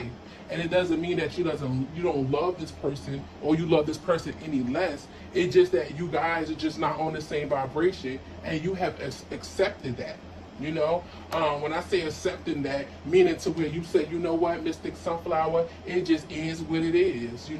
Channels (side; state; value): both; identical; correlation 1.00